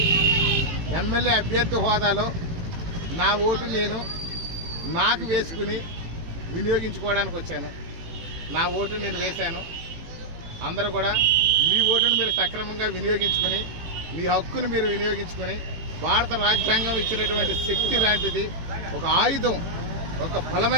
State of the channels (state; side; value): late; left; 18 ms